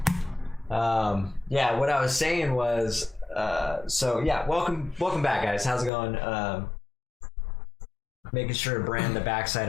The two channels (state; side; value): drops out; right; at 5.9 s